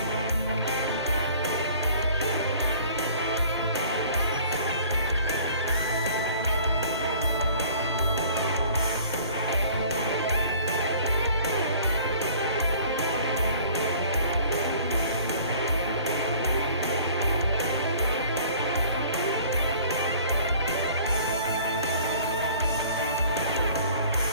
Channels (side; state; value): both; inverted; correlation -0.51